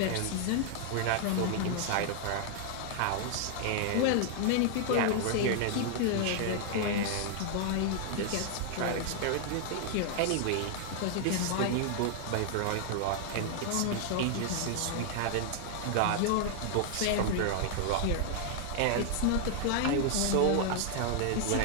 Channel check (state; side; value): different; both; correlation 0.00